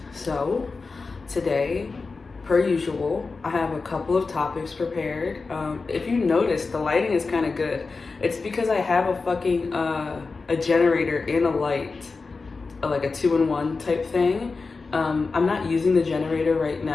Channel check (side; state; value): right; quieter; 4.2 dB